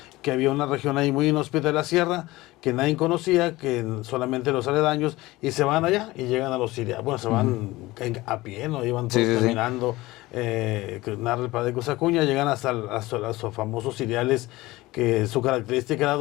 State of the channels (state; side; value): quieter; right; 19.3 dB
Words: que había una región ahí muy inhóspita de la sierra, que nadie conocía, que solamente los aledaños, y se van allá y llegan a los sirianos. Bueno, se van a pie, ¿no? Iban todos caminando, que narra el padre Cosacuña, llegan hasta los famosos cereales, que su característica era